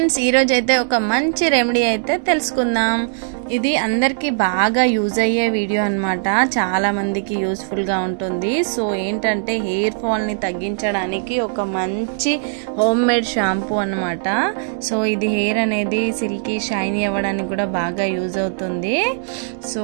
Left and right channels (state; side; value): silent; left; digital silence